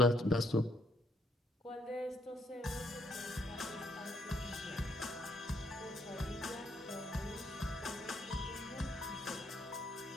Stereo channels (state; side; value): normal; both; correlation 0.71